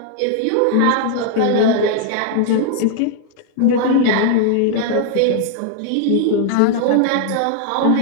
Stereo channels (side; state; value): both; different; correlation 0.00